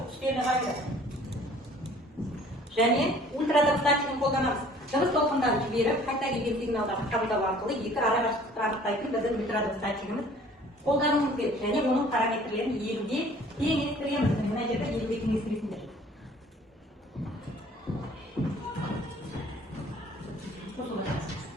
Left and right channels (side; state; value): both; normal; correlation 0.53